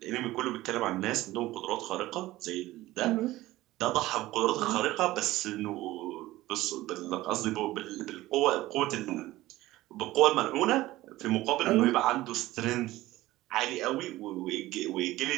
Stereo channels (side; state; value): left; quieter; 17.1 dB